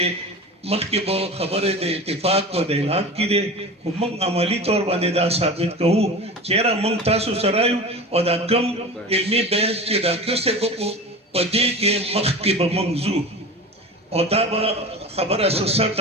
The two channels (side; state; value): both; normal; correlation 0.32